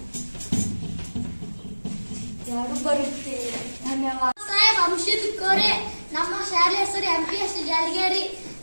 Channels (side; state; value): both; inverted; correlation -1.00